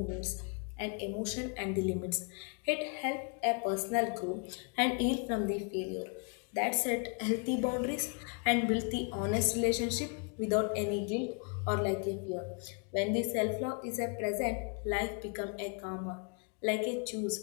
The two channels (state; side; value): quieter; right; 38.4 dB